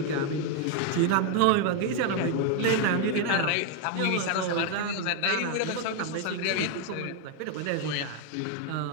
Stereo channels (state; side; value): different; both; correlation 0.01